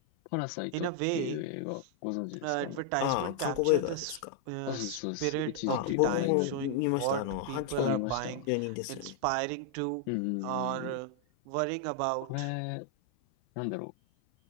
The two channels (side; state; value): both; different; correlation 0.00